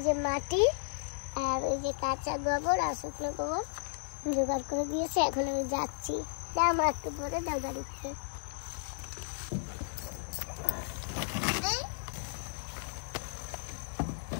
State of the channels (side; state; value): right; silent; digital silence